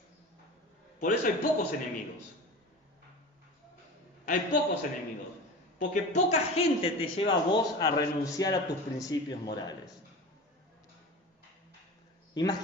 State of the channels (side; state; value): both; normal; correlation 0.32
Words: Por eso hay pocos enemigos. Hay pocos enemigos. Porque poca gente te lleva a vos a renunciar a tus principios morales.